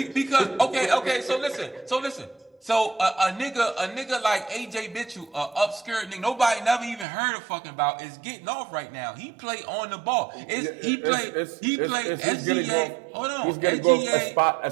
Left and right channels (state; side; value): drops out; left; at 7.1 s